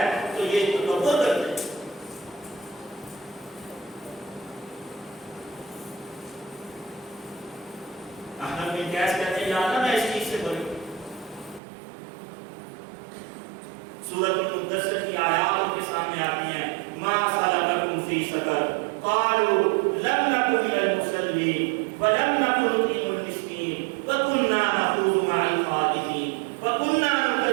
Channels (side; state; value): left; drops out; at 11.6 s